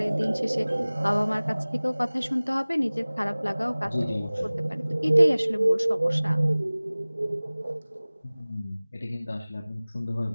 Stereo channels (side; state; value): both; inverted; correlation -0.99